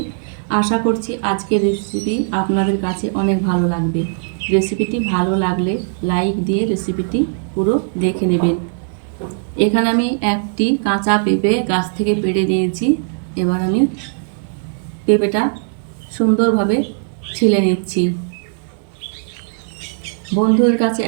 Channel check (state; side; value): silent; left; digital silence